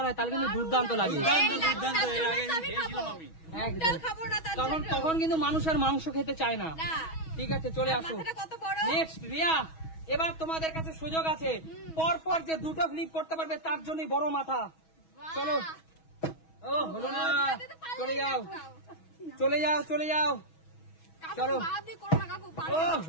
হয় তাহলে কিন্তু দুর্দান্ত লাগে। দুর্দান্ত, এই দুর্দান্ত। তার এর জন্য আগে তো আমি খেয়েছিলাম খাবো। আমি। একদম। ডাল খাবো না তার তখন জন্য। তখন কিন্তু মানুষ আর মাংস খেতে চায় না। না। ঠিক আছে চলে আসো। মাথাটা কত বড়? নেক্সট রিয়া, এবার তোমাদের কাছে সুযোগ আছে। পর পর যে দুটো ফ্লিপ করতে পারবে তার জন্যই বড় মাথা। চলো। ও হলো না, চলে যাও চলে যাও চলে যাও। কাকু চলো। বাদ দিয়ে করো না কাকু। পারবে ও না।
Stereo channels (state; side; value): late; right; 6.2 ms